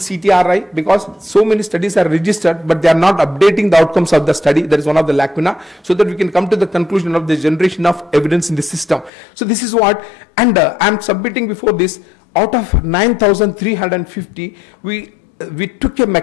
because so many studies are registered, but they are not updating the outcomes of the study. That is one of the lacuna, so that we can come to the conclusion of the generation of evidence in the system. So this is what, and I'm submitting before this, out of 9,350, we took a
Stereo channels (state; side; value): drops out; right; at 9.1 s